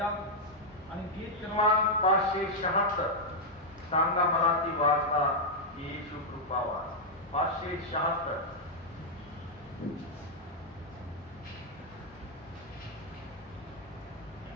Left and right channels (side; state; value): both; normal; correlation -0.03